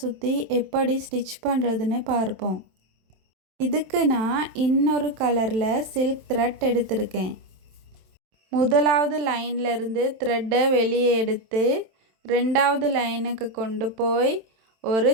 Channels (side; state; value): left; late; 27 ms